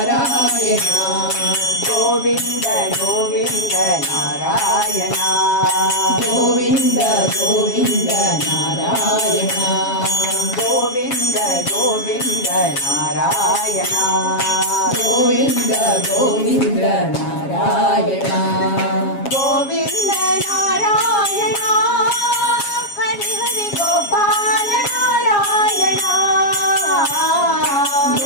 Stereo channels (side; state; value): right; late; 7.3 ms